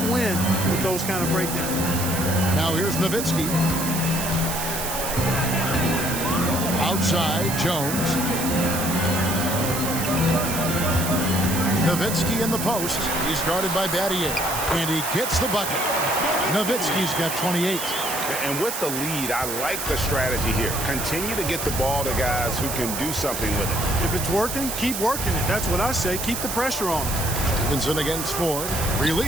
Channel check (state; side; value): noise; right; hiss, 4 dB below the sound